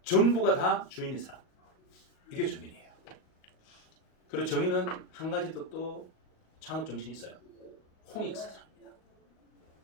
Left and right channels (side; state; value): right; late; 38 ms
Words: 전부가 다 주인인 사람, 이게 정인이에요. 그리고 정인은 한 가지 또 창업 정신이 있어요. 홍익사상입니다.